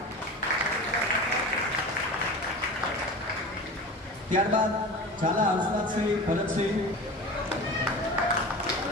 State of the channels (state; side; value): normal; both; correlation 0.33